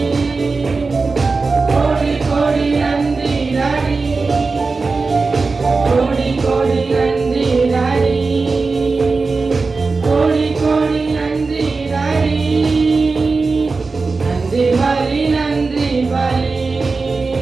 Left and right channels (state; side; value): quieter; left; 4.1 dB